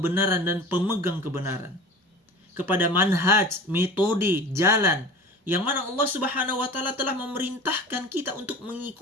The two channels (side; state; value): both; normal; correlation 0.37